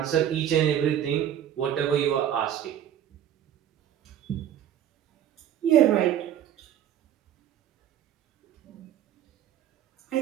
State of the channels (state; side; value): quieter; left; 10.5 dB